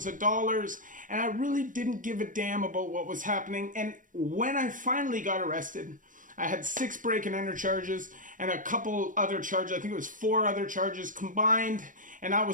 of dollars, and I really didn't give a damn about what was happening. And when I finally got arrested, I had 6 break and enter charges and a couple other charges. I think it was 4 other charges combined. And I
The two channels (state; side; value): late; left; 0.38 ms